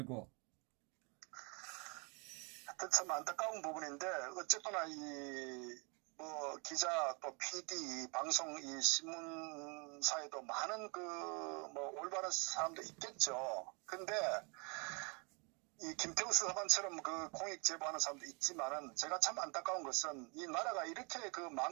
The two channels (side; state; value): left; quieter; 32.7 dB